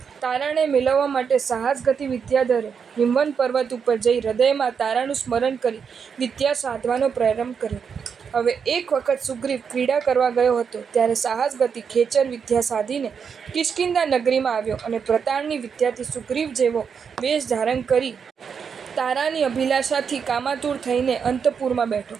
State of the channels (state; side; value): quieter; left; 6.5 dB